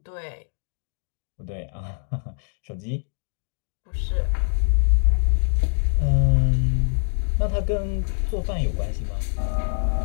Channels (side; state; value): right; silent; digital silence